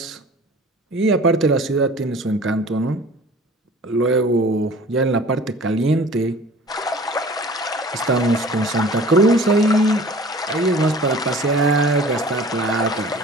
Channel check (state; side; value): normal; both; correlation 0.46